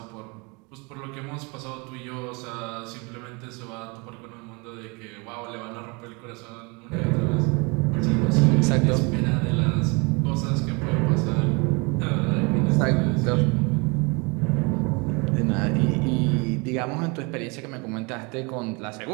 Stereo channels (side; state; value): left; quieter; 29.4 dB